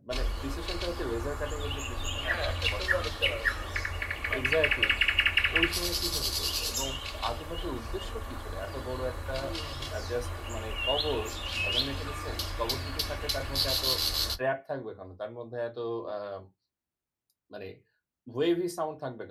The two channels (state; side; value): identical; both; correlation 1.00